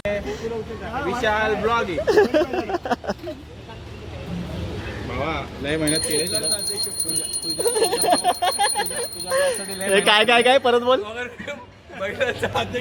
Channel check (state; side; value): identical; both; correlation 1.00